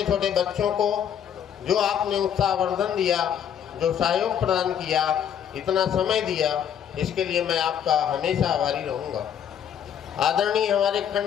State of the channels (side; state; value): right; quieter; 8.9 dB